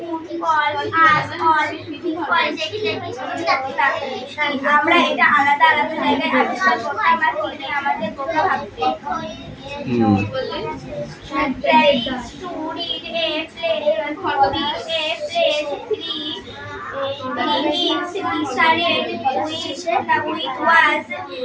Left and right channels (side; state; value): both; identical; correlation 1.00